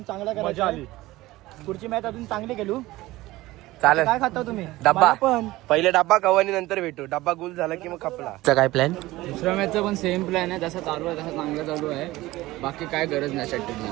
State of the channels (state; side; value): quieter; left; 18.2 dB